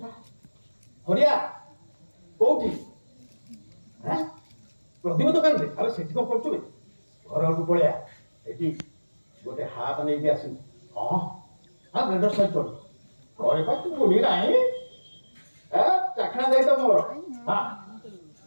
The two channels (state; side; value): inverted; both; correlation -1.00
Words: হরিয়া কোউঠি হ্যাঁ প্রদীপ দোকাନରେ আরে সেଠି କଣ କରୁଛୁ ଘରକୁ ପଳେଆ ଏଠି ଗୋଟେ ହାତ ନେଇକି ଆସିବୁ ହଁ ହଁ ବ୍ଲେଣ୍ଡର ସହିତ ଘରେ ପା ତୁ ବୁଲି ନାହିଁ ଚାଖଣା ଯାଇ ତ ମୋର ହଁ